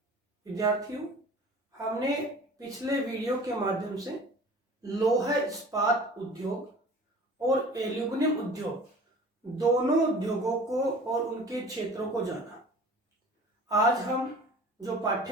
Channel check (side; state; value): both; normal; correlation 0.44